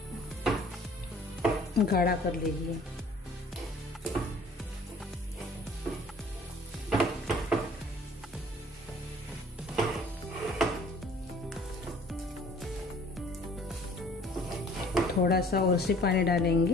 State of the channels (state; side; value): normal; both; correlation 0.53